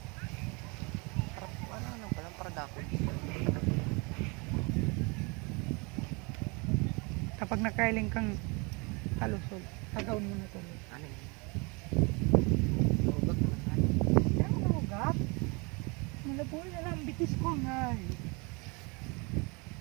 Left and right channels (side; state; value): left; quieter; 29.5 dB